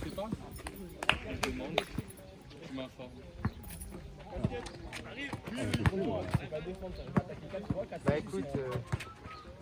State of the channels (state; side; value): identical; both; correlation 1.00